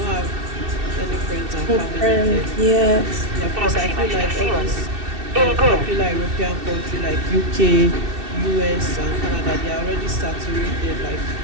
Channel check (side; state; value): left; late; 2.7 ms